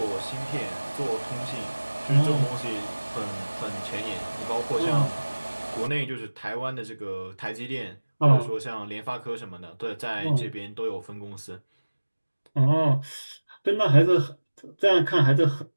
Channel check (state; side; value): inverted; both; correlation -1.00